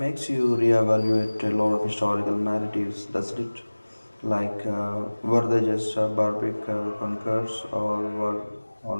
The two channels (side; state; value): both; inverted; correlation -1.00